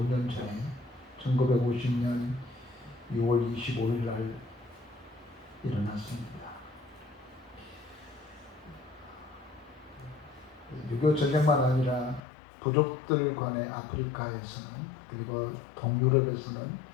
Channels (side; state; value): right; drops out; at 12.2 s